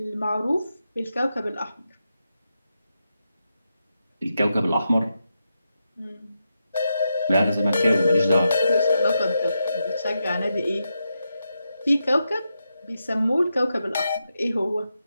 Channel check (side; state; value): both; inverted; correlation -0.87